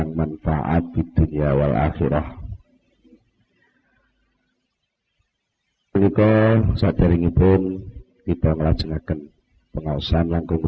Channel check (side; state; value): both; identical; correlation 1.00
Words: manfaat di dunia wal akhirah. Menika saderengipun kita nglajengaken pengaosan langkung